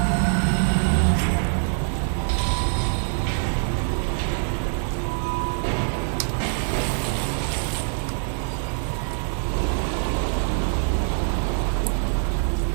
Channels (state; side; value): silent; left; digital silence